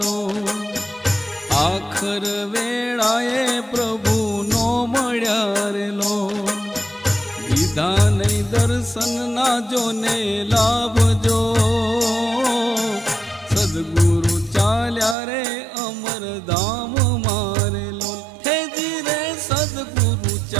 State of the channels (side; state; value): left; drops out; at 15.2 s